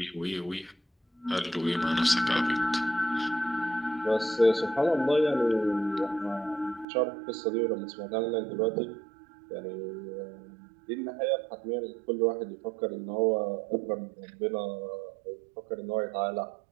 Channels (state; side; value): drops out; left; at 6.9 s